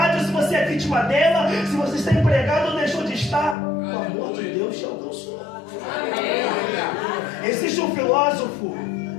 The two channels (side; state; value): right; drops out; at 3.6 s